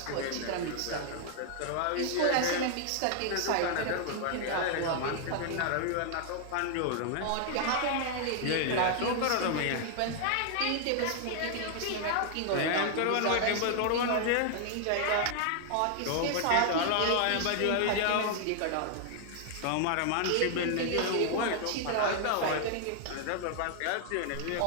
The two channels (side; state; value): both; different; correlation 0.00